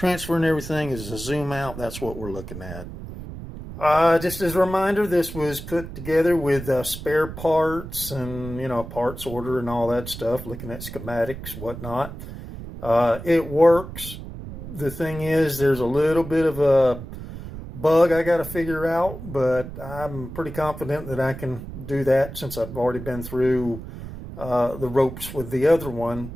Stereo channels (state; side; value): noise; right; rumble, 11 dB below the sound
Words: everything as a zoom out. That's what we're looking at. Just as a reminder, this was put together with spare parts and, parts order and all that stuff, looking at schematics, whatnot. It works. The thing is, there's a little bit of a bug I got to figure out, but I'm pretty confident that I can do that, since I've already been through the ropes with the other one.